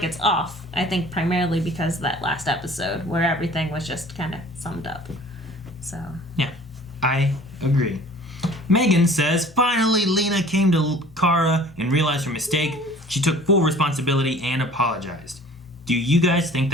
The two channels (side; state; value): both; normal; correlation 0.48